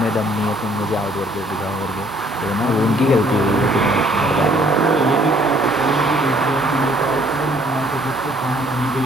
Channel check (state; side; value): normal; both; correlation 0.61